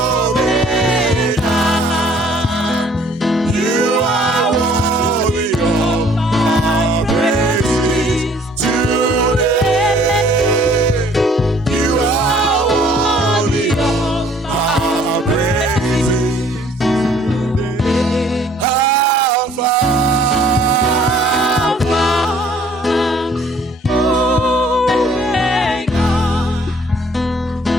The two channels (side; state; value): both; normal; correlation 0.58